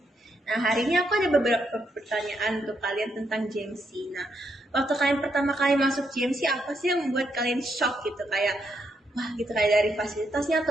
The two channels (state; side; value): normal; both; correlation 0.78